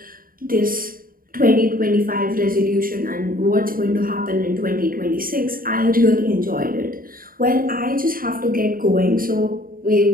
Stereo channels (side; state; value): left; late; 0.41 ms